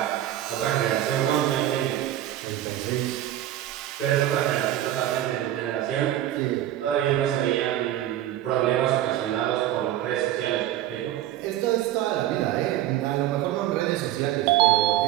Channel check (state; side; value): quieter; left; 13.0 dB